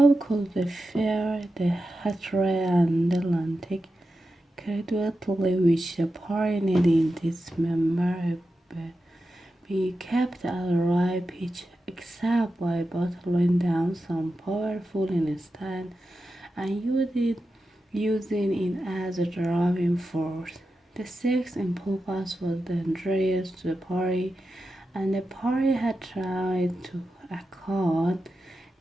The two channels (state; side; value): normal; both; correlation 0.91